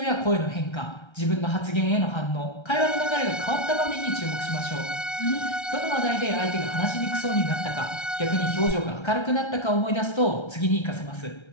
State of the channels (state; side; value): late; right; 1.3 ms